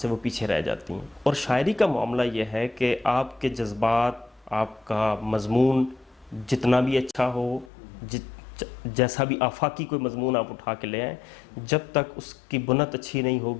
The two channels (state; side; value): drops out; right; at 7.7 s